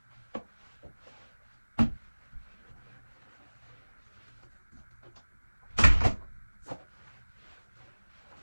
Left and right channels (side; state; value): both; inverted; correlation -1.00